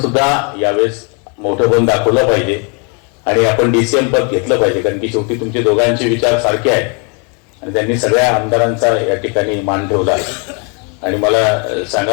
सुद्धा यावेळेस मोठं पण दाखवलं पाहिजे आणि आपण DCM पद घेतलं पाहिजे, कारण की शेवटी तुमचे दोघांचे विचार सारखे आहेत आणि त्यांनी सगळ्या आमदारांचा या ठिकाणी मान ठेवला आणि मला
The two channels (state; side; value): quieter; right; 35.8 dB